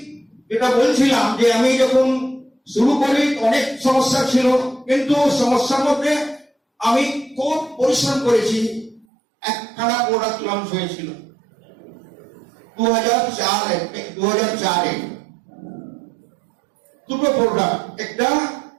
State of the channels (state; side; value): drops out; left; at 9.1 s